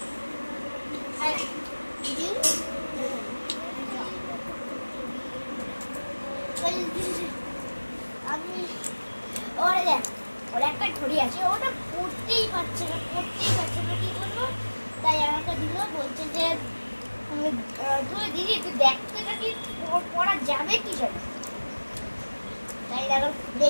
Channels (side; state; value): both; inverted; correlation -1.00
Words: আমি ওর একটা ঘড়ি আছে, ওটা পড়তেই পারছে না কি করবো? তাই আমাকে দিল, বলছে যে তুই দিদি তুই দেখ তো এটা কি পড়া যাবে কি যাবে। তাই দেখো